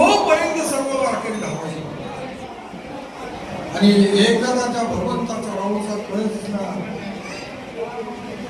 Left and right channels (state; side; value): identical; both; correlation 1.00